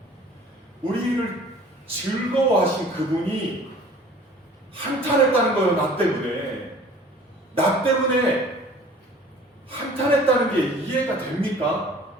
우리를 즐거워하신 그분이 한탄했다는 거예요. 나 때문에 한탄했다는 게 이해가 됩니까?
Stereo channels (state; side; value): normal; both; correlation 0.48